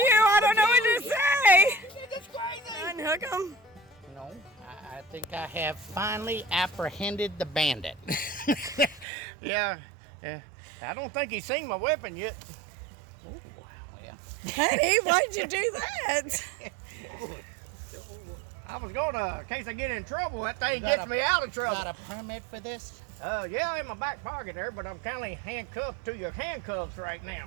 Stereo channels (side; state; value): left; drops out; at 9.1 s